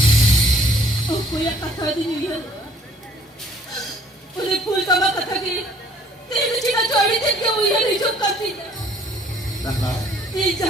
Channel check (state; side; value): normal; both; correlation 0.58